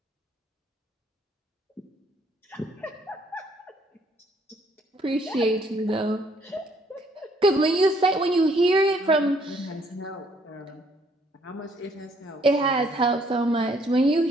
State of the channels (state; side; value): normal; both; correlation 0.66